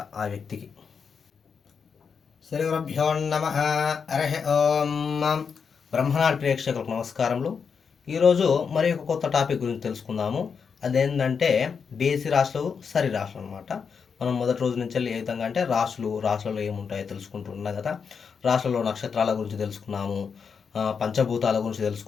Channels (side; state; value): right; quieter; 6.1 dB